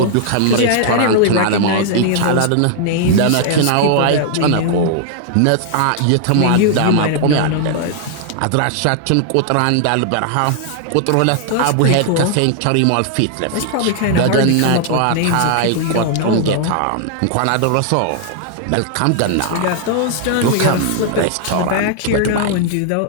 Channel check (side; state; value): both; different; correlation 0.00